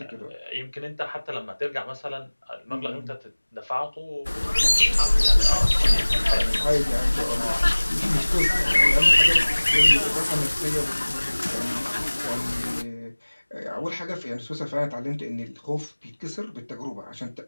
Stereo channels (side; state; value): both; inverted; correlation -1.00